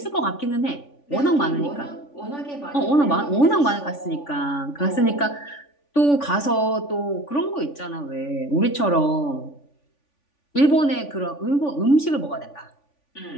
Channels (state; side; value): late; right; 3.5 ms